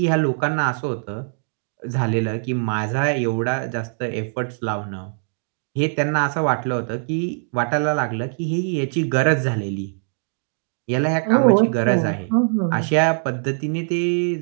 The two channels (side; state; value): left; silent; digital silence